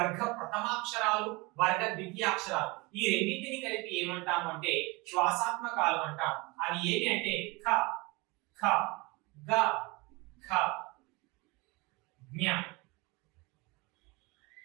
ప్రథమాక్షరాలు, వర్గ ద్వితీయాక్షరాలు. ఈ రెండింటిని కలిపి ఏమంటాము అంటే శ్వాసాత్మకాలు అంటాం. అవి ఏవి అంటే ఖ, ఖ, గ, ఖ, జ్ఞ.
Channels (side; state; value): left; quieter; 25.6 dB